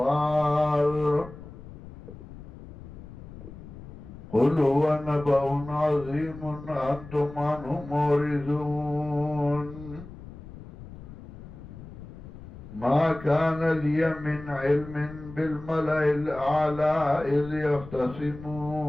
قل هو نبأ عظيم أنتم عنه معرضون. ما كان لي من علم بالملأ الأعلى إذ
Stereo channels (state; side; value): noise; left; rumble, 15 dB below the sound